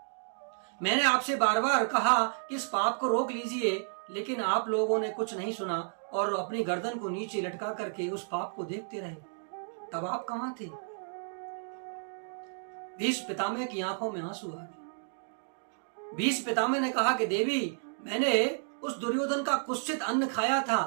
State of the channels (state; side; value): silent; left; digital silence